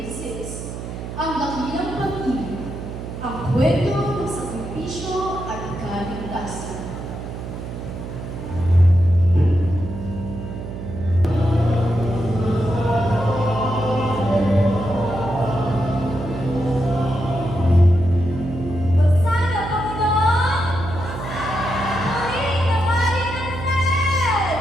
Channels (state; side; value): noise; right; hum, 8 dB below the sound